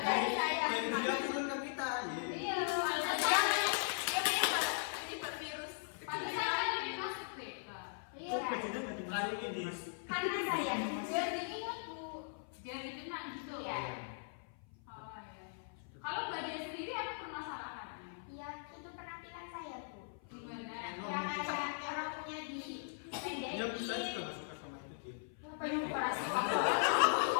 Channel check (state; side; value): silent; right; 52 dB below the other